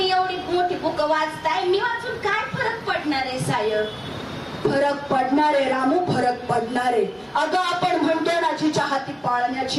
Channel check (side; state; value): both; identical; correlation 1.00